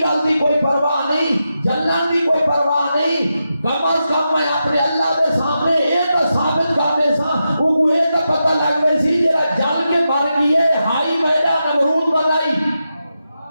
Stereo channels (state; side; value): inverted; both; correlation -0.88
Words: دی کوئی پرواہ نہیں، جلن دی کوئی پرواہ نہیں، کم از کم میں اپنے اللہ دے سامنے یہ تو ثابت کرنے سا لگ گئی سی جڑا جل کے مر گئے ہائی میدہ نمرود بنائی